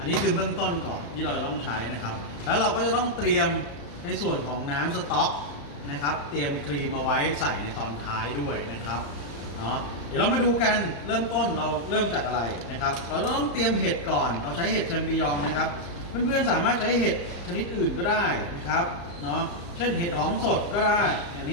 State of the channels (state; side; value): late; right; 35 ms